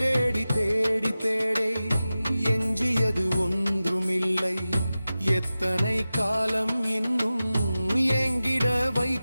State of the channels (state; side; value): inverted; both; correlation -0.95